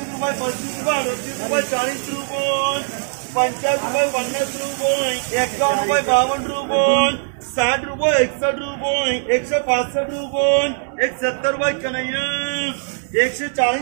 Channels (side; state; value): left; silent; digital silence